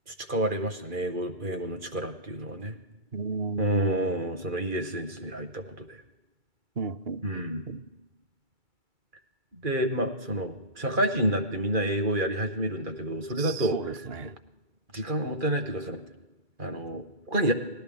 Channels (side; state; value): left; late; 2.4 ms